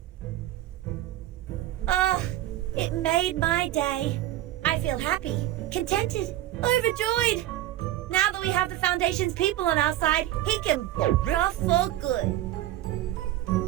Oh, it made my day. I feel happy, contented, overjoyed. Now that we have the Foundation's people on our side, he can rough for good.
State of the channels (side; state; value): left; quieter; 14.2 dB